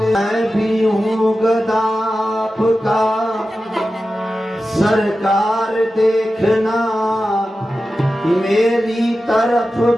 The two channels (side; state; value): both; normal; correlation 0.93